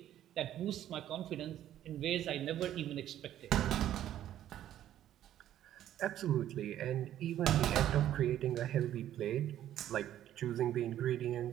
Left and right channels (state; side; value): quieter; left; 11.9 dB